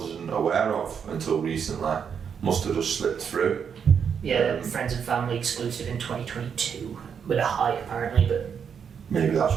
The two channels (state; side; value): quieter; left; 7.2 dB